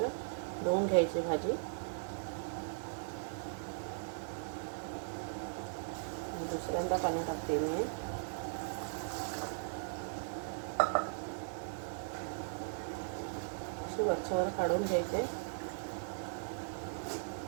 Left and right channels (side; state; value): left; silent; digital silence